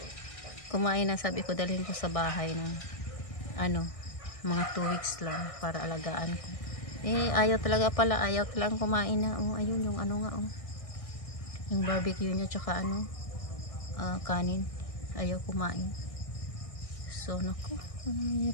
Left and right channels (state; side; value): late; right; 1.6 ms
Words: kumain na, sabi ko dalhin ko sa bahay ng mga 2 weeks lang para alagaan ko. Ayaw talagang kumain na. Ayun yung yung barbecue niya tsaka kanin. Ayaw kumain. So naku,